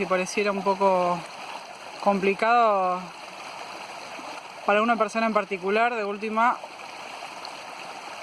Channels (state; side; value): identical; both; correlation 1.00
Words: pareciera un poco complicado para una persona en particular, de última